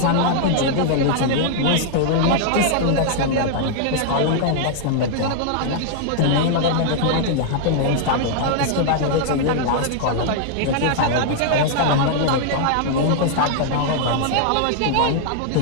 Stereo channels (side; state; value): both; different; correlation -0.01